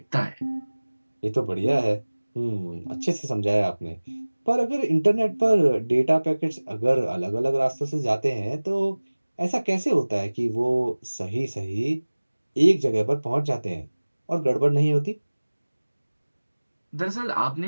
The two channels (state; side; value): inverted; both; correlation -1.00